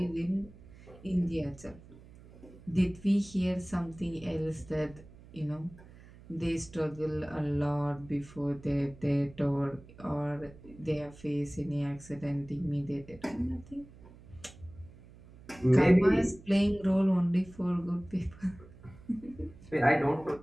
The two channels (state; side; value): noise; right; hum, 21 dB below the sound